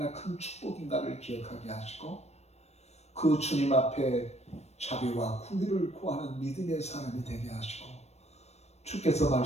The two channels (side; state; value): right; late; 0.31 ms